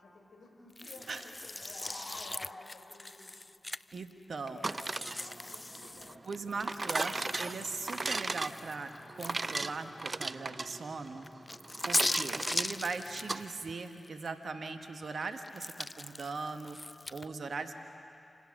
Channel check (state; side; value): normal; both; correlation 0.94